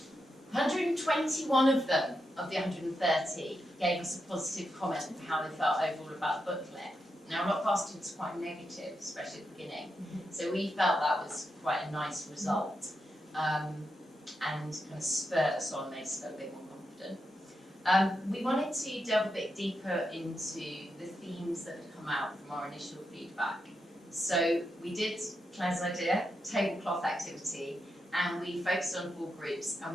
of them, of the 130, gave us a positive comment of how they felt overall about the booklet. Now, a lot of our students are quite negative, especially at the beginning, so we felt that was quite a nice result, and kind of spurred us on, made us feel a bit more confident. We wanted to delve a bit deeper into the themes that had come out from our initial feedback. So we did Claire's idea, tablecloth activity, and we focused on 4 groups, and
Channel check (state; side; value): normal; both; correlation 0.85